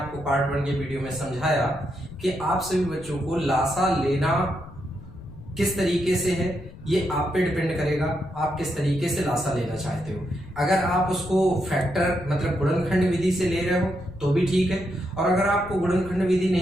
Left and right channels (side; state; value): left; noise; rumble, 17 dB below the sound